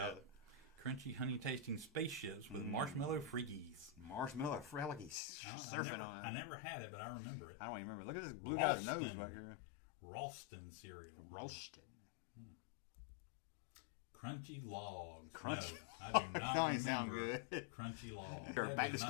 Crunchy, honey-tasting spaceships with marshmallow freakies. Marshmallow freakies. I never had it, but I remember it. I don't even remember. Look at this blue guy's nose back here. Ralston cereal. Ralston. Crunchy Logs. No, I do not remember Crunchy Logs. Back to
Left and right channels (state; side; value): drops out; right; at 5.2 s